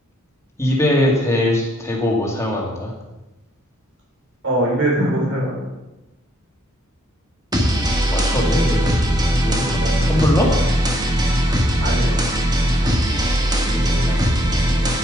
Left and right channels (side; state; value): both; normal; correlation 0.70